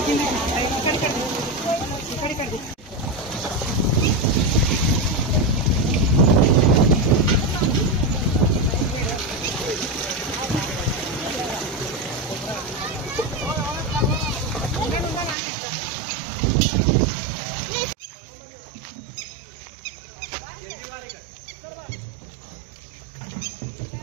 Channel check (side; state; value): left; drops out; at 15.4 s